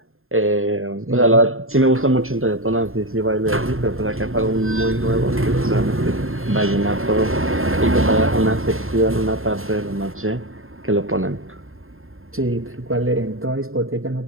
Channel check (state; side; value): late; left; 0.61 ms